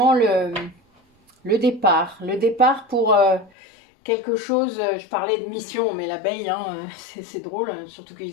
le départ. Le départ pour quelque chose. Je parlais de mission, mais l'abeille, hein, c'est drôle. Surtout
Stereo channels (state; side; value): drops out; right; at 3.5 s